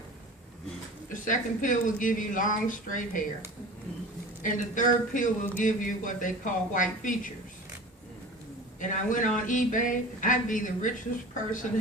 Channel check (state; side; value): normal; both; correlation 0.37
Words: the second pill will give you long straight hair, and the third pill will give you what they call white features. And I went on eBay, I'd be the richest person